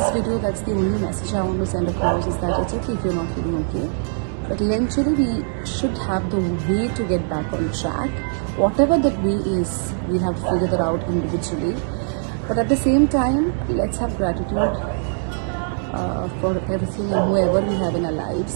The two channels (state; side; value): silent; left; digital silence